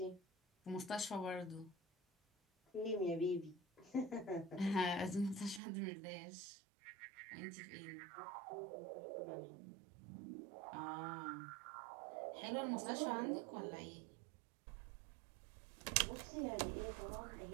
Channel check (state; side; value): drops out; left; at 5.6 s